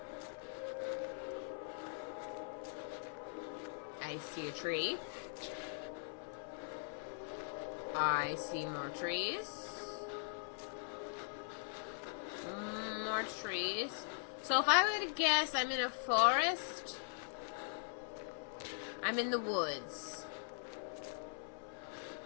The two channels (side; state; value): right; silent; 50 dB below the other